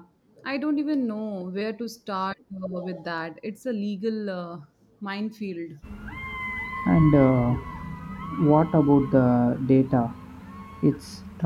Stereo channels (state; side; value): identical; both; correlation 1.00